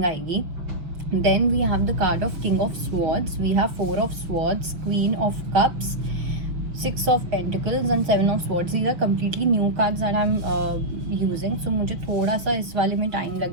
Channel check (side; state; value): left; late; 5.9 ms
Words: आएगी. Then we have the card of King of Swords, we have Four of Swords, Queen of Cups, Six of Pentacles and Seven of Swords. These are completely new cards that I'm using. So मुझे थोड़ा सा इस वाले में time